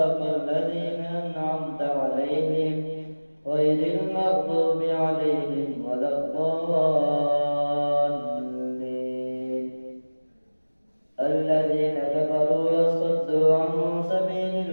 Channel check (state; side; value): inverted; both; correlation -1.00